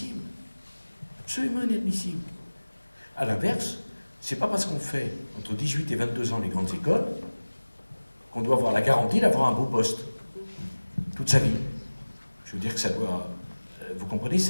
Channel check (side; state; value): both; inverted; correlation -1.00